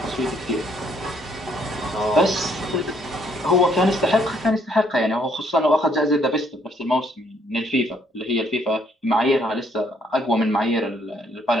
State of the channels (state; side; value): normal; both; correlation 0.68